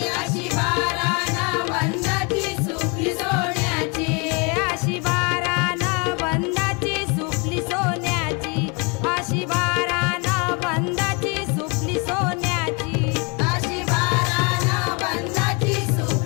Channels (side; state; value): right; quieter; 31.5 dB